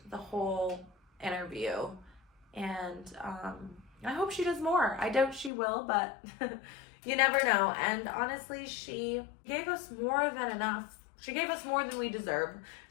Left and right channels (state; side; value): drops out; right; at 5.5 s